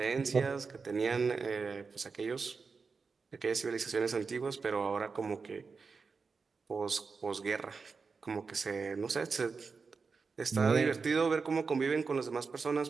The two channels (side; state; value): left; quieter; 4.9 dB